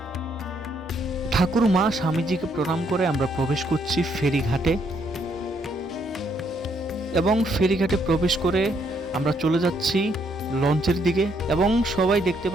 ঠাকুর মা স্বামীজিকে প্রণাম করে আমরা প্রবেশ করছি ফেরিঘাটে, এবং ফেরিঘাটে প্রবেশ করে আমরা চলে যাচ্ছি লঞ্চের দিকে, এবং সবাই দেখতে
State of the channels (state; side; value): normal; both; correlation 0.72